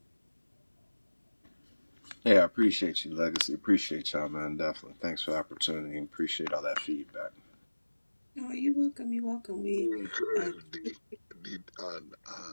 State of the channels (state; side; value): inverted; both; correlation -1.00